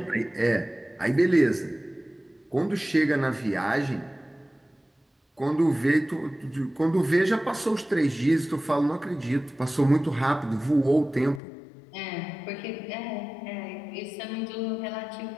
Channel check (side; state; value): right; drops out; at 11.4 s